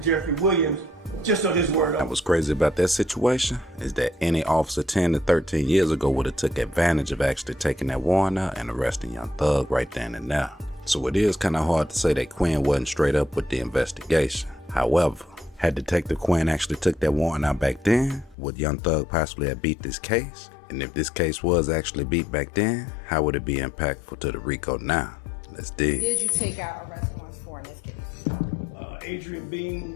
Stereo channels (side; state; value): right; drops out; at 18.4 s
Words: Williams just on his word. What was crazy about that situation is that any officer 10 to 13 years ago would have took advantage of actually taking that warrant out and arresting Young Thug right then and now. So it is kind of hard to say that Quinn wasn't straight up with the investigation. However, had Detective Quinn actually took that warrant out back then, would Young Thug possibly have beat this case? And if this case was actually beat back then, how would it be impactful to the Rico now? Let's dig. Did you take out arrest warrants for in this case? Adrian